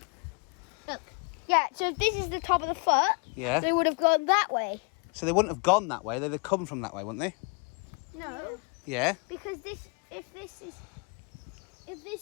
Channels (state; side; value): quieter; right; 34.3 dB